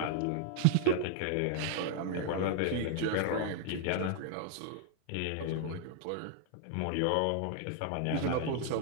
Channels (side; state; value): both; different; correlation -0.01